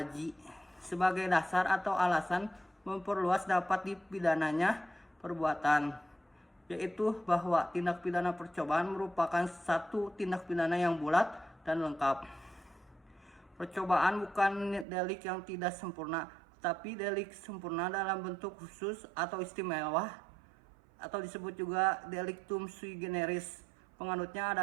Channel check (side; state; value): left; drops out; at 14.9 s